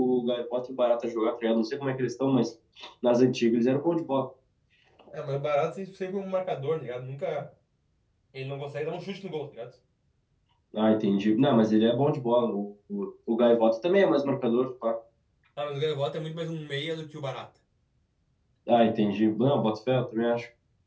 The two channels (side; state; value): both; identical; correlation 1.00